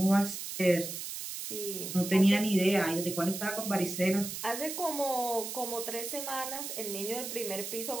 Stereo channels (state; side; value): noise; right; hiss, 6 dB below the sound